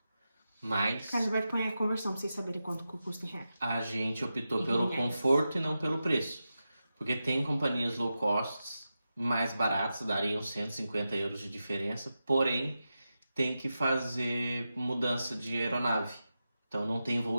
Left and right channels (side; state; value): both; inverted; correlation -0.91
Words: Mas Carlos Alberto põe a conversão pra vocês saberem quanto custa em reais. a gente optou pelo conforto e não pelo preço. Porque tem companhias low cost mais baratas, dariam 150 euros de diferença, porém tem que fazer mudança de aeronave. Então não tem